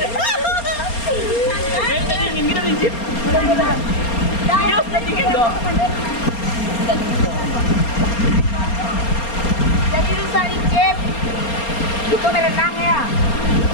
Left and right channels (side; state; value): right; late; 4.3 ms